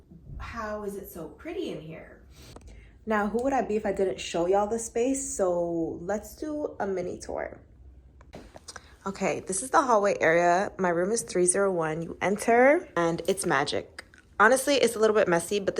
how is it so pretty in here? Now, who would I be if I didn't show y'all the space? So let's do a mini tour. Okay, this is the hallway area. My room is 301. You enter and it's magic. Honestly, it's a little bit messy, but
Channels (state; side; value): identical; both; correlation 1.00